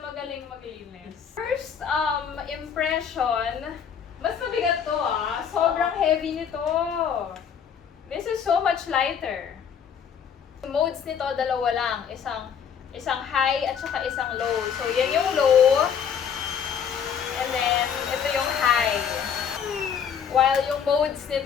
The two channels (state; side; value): quieter; right; 7.6 dB